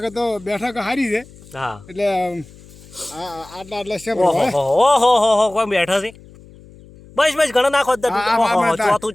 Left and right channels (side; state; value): left; noise; hum, 22 dB below the sound